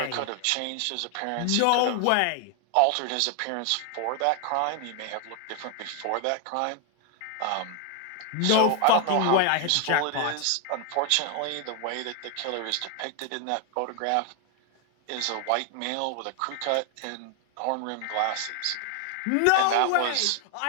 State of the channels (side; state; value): both; different; correlation 0.00